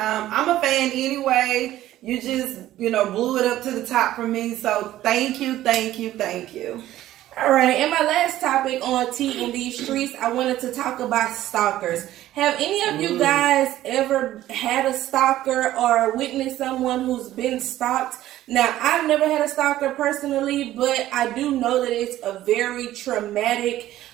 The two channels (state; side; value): quieter; left; 14.0 dB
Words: a fan anyway. You just, blew it up to the top for me. So thank you. All right, and my last topic on T in these streets, I wanted to talk about stalkers. Have any of you guys ever had a stalker or witnessed someone who's been stalked? Now, I've never had a stalker personally, but I do know that it's a very traumatic